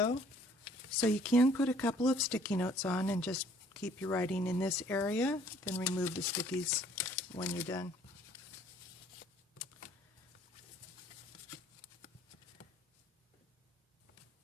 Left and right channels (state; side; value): normal; both; correlation 0.58